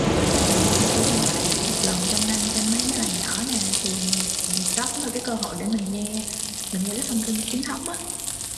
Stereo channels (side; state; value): both; identical; correlation 1.00